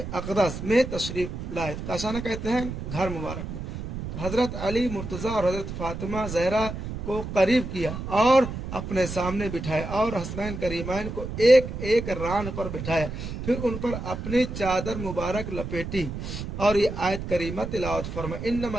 अक़दस में तशरीफ़ लाए। काशाना कहते हैं घर मुबारक में। हज़रत अली, मुर्तज़ा और हज़रत फातिमा ज़हरा को करीब किया और अपने सामने बिठाया और हसनैन करीमैन को एक एक रान पर बिठाया, फिर उन पर अपनी चादर मुबारक लपेटी और ये आयत करीमा तिलावत फरमा, इन्नमा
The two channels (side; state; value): right; noise; rumble, 7 dB below the sound